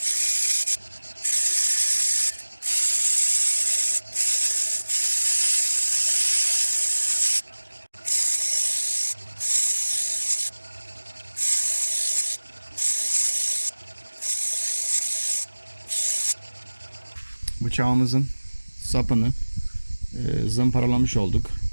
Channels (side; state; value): both; inverted; correlation -1.00